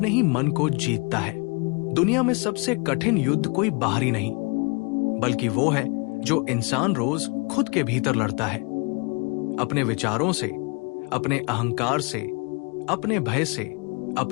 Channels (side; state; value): right; quieter; 31.9 dB